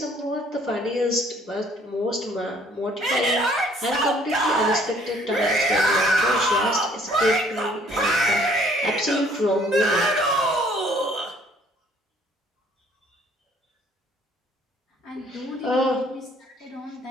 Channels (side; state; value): both; normal; correlation 0.60